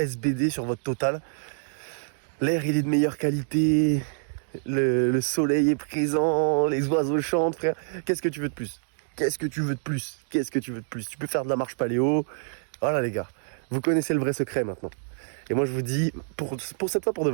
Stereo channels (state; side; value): silent; left; digital silence